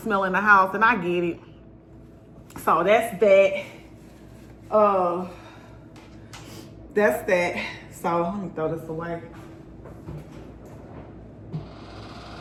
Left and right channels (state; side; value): identical; both; correlation 1.00